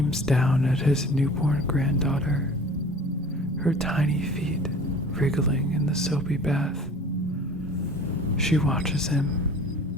down at his newborn granddaughter, her tiny feet wriggling in the soapy bath. She watches him,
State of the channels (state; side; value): normal; both; correlation 0.45